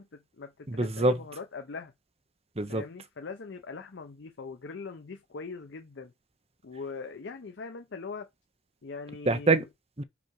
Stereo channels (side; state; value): both; normal; correlation 0.33